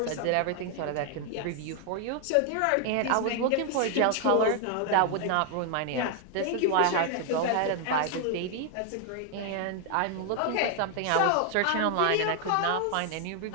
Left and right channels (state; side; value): different; both; correlation 0.00